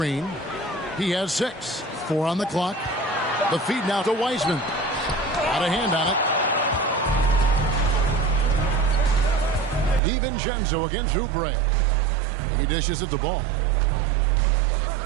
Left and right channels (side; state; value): left; drops out; at 10.0 s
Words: He has 6. 4 on the clock. The feed now to Wiseman. Got a hand on it. DiVincenzo against Oubre. He dishes it to Ball.